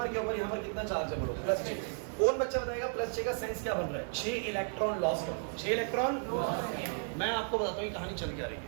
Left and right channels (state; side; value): silent; left; 55 dB below the other